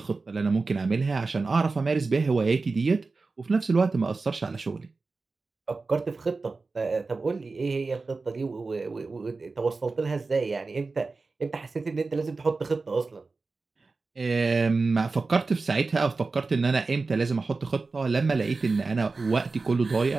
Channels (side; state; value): left; quieter; 3.9 dB